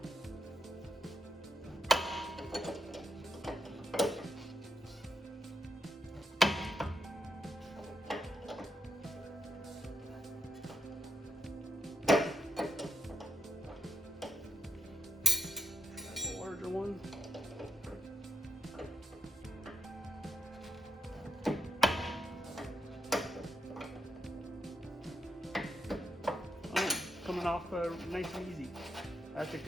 Larger one. Oh, coming off nice and easy. That's a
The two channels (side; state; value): both; normal; correlation 0.79